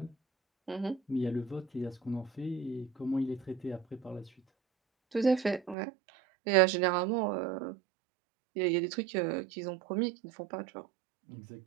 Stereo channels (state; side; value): drops out; left; at 5.8 s